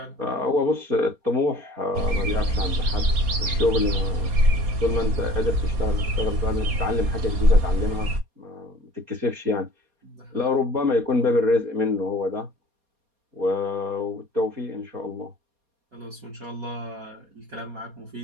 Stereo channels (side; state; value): left; late; 4.2 ms